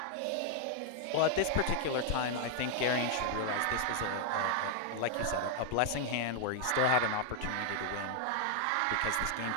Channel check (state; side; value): different; both; correlation 0.00